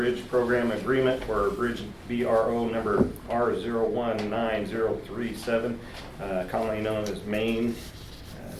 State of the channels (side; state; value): both; identical; correlation 1.00